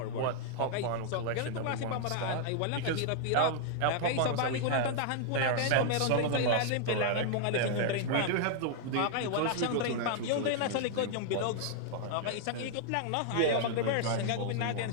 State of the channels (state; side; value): different; both; correlation -0.01